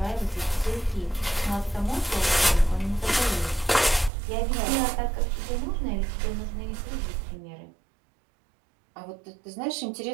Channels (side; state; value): left; drops out; at 4.1 s